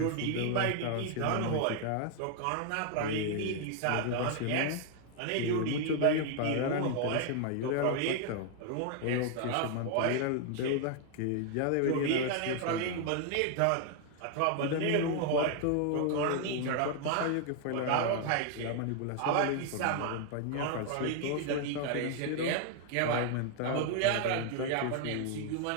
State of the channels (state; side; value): different; both; correlation 0.00